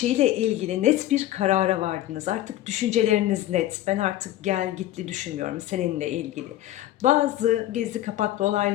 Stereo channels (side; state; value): right; quieter; 14.1 dB